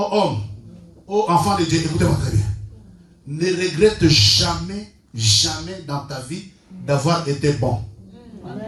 aux enfants de Dieu, écoutez-moi très bien. Ne regrette jamais, jamais dans ta vie d'avoir été bon.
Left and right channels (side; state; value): both; identical; correlation 1.00